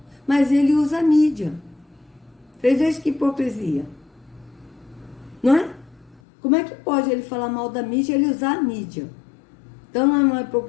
Mas ele usa a mídia. Vocês vejam que hipocrisia. Não é? Como é que pode ele falar mal da mídia e ele usar a mídia? Então não é uma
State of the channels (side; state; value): right; drops out; at 6.2 s